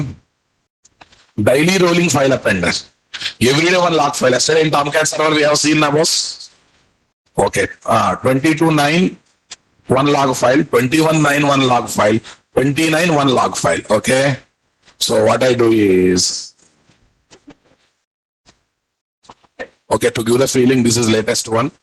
daily rolling file appender. Every day one log file. Yesterday in Tomcat server we have seen now, boss. Okay, 22.9 one log file, 21.9 one log file, 29 one log file. Okay, so what I do is, okay, to give the feeling this is latest one,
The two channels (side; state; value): both; identical; correlation 1.00